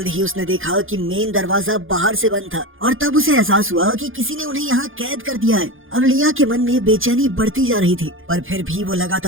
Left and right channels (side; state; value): left; late; 0.59 ms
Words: ही उसने देखा कि मेन दरवाजा बाहर से बंद था और तब उसे एहसास हुआ कि किसी ने उन्हें यहाँ कैद कर दिया है। अब लिया के मन में बेचैनी बढ़ती जा रही थी, पर फिर भी वो